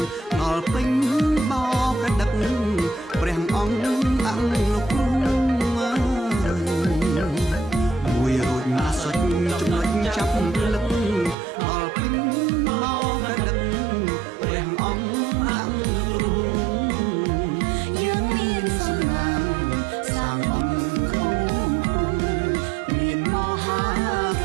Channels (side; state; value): left; drops out; at 11.4 s